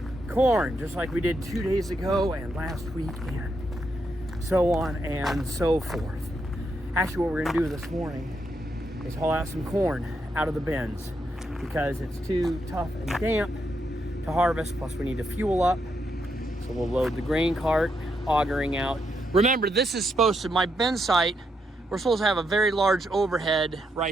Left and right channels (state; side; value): normal; both; correlation 0.80